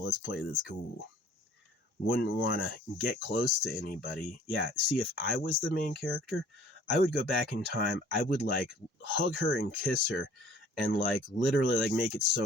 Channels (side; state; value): both; normal; correlation 0.53